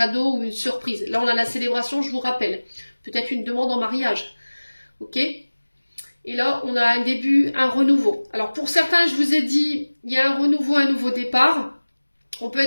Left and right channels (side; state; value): both; inverted; correlation -1.00